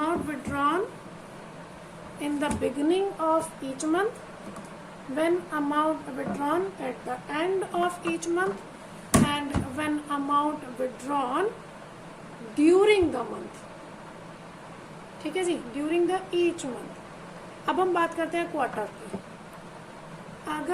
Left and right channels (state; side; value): identical; both; correlation 1.00